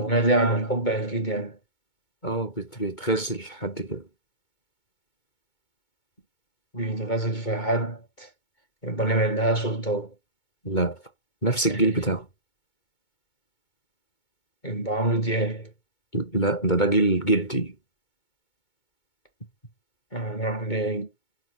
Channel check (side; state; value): right; late; 2.2 ms